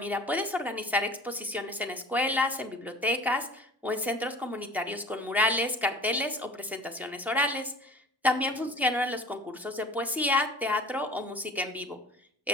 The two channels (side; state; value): both; normal; correlation 0.44